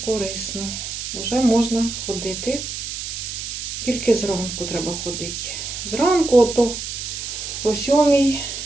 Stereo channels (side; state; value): right; noise; hiss, 6 dB below the sound